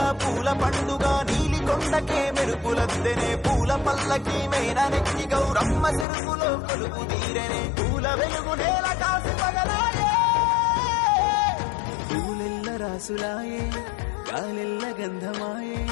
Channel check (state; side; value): drops out; right; at 6.1 s